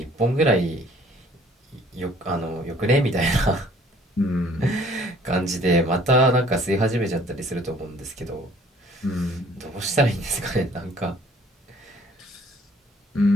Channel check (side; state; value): both; normal; correlation 0.57